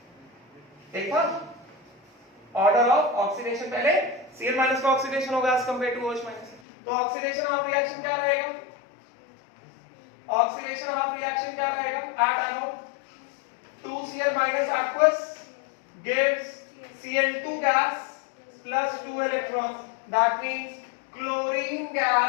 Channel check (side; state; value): right; drops out; at 6.6 s